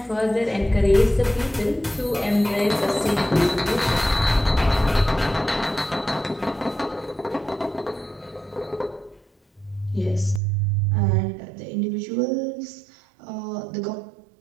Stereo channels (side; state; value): left; drops out; at 10.4 s